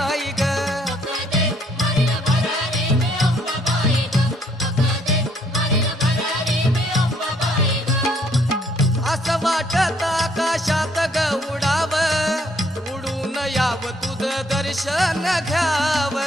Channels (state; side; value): normal; both; correlation 0.67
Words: ग असं वाटत आकाशात ग उडाव उडून याव तुझं दर्शन घ्याव